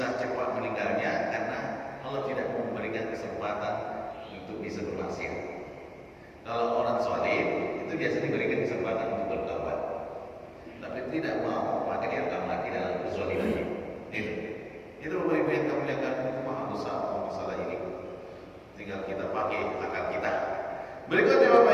cepat meninggalnya karena Allah tidak memberikan kesempatan untuk bisa bermaksiat. Kalau orang zalim itu biasanya diberikan kesempatan untuk bertaubat, tapi tidak mau, maka dia akan mati dalam kezalimannya. Itu Bapak Ibu yang kami muliakan, berusaha masalah ini. Tinggal kita pakai akal kita. Berikutnya Bapak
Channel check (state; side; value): identical; both; correlation 1.00